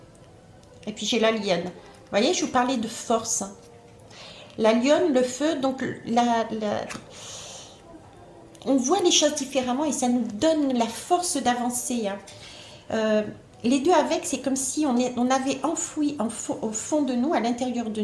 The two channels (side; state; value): both; identical; correlation 1.00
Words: Et puis j'ai la lionne. Vous voyez, je vous parlais de force. La lionne, le feu, donc on voit les choses différemment et ça nous donne la force d'avancer. Hein. Les deux avec, c'est comme si on avait enfoui au fond de nous, à l'intérieur de